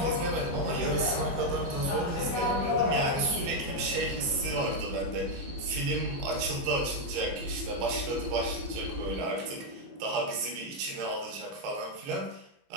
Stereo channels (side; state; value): left; late; 15 ms